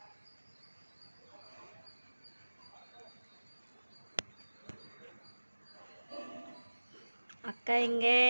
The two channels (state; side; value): inverted; both; correlation -1.00